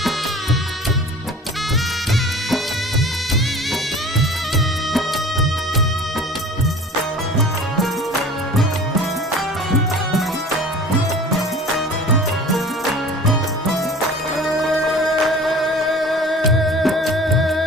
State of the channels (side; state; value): both; normal; correlation 0.43